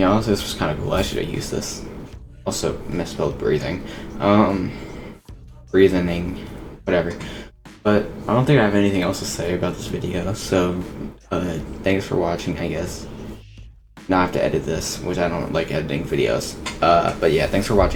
this was kind of cool. I should have used this. Also misspelled breathing. Breathing, whatever. But I don't think I have anything else to say about this video, so thanks for watching, I guess. Now I have to edit this, which I don't like editing videos. But yeah, thanks for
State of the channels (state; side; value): identical; both; correlation 1.00